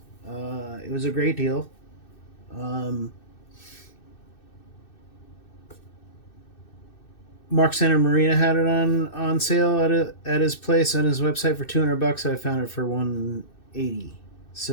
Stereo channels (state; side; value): late; right; 2.6 ms